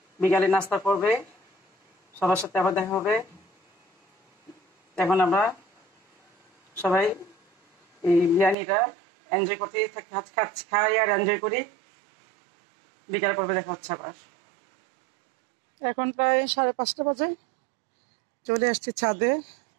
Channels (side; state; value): left; drops out; at 8.6 s